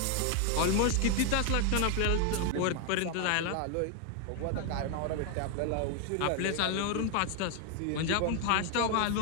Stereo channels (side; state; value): both; different; correlation 0.00